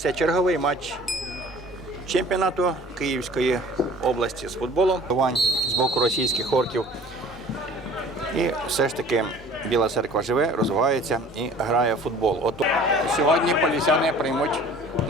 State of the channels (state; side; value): normal; both; correlation 0.48